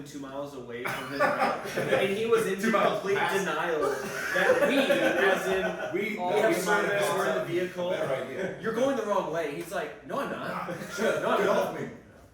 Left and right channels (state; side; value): identical; both; correlation 1.00